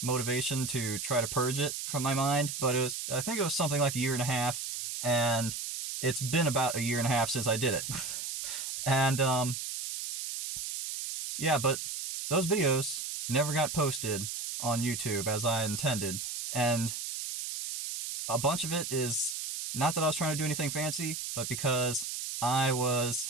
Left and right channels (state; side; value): noise; right; hiss, 5 dB below the sound